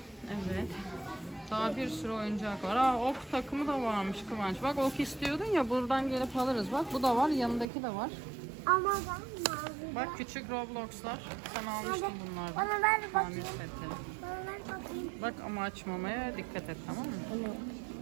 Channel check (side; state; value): left; drops out; at 7.7 s